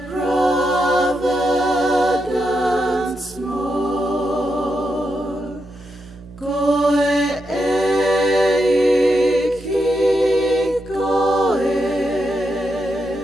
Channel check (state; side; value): noise; right; hum, 22 dB below the sound